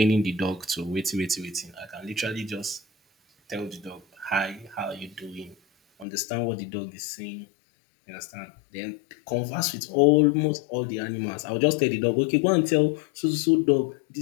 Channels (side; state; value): right; drops out; at 6.1 s